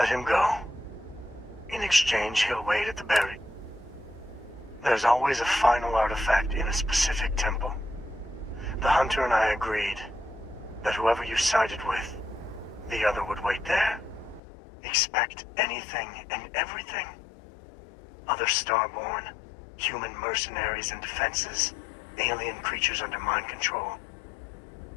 him go. In exchange, he'll wait at the buried. There's always a final artifact in a specific temple. The hunter and I agreed that whoever you sided with, the other would wait there. Expect anything and everything. Other Starborn, human mercenaries and defenses, alien creatures under mind control.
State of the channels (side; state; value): right; drops out; at 14.4 s